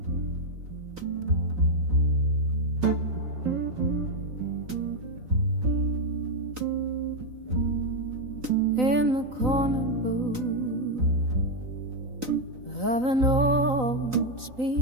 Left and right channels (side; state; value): left; late; 3.9 ms